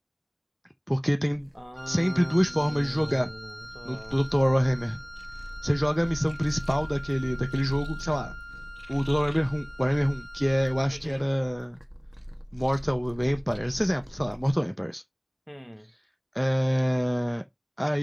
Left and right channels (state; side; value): identical; both; correlation 1.00